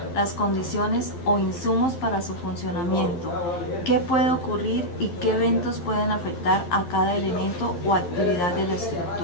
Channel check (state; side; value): late; right; 11 ms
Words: las condiciones o insumos para su funcionamiento, qué puede ocurrir y qué eventos pueden afectar a cada elemento o actividad de la